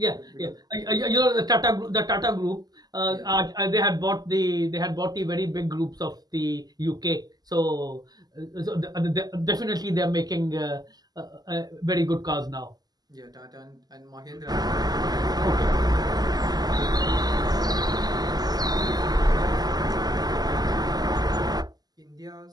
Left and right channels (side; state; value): left; late; 0.19 ms